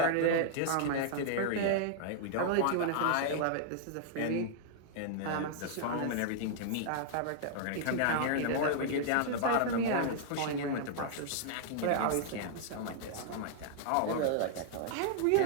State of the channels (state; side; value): different; both; correlation -0.01